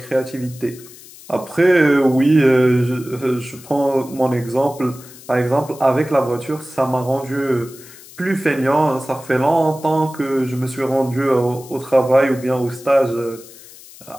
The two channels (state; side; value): noise; left; hiss, 20 dB below the sound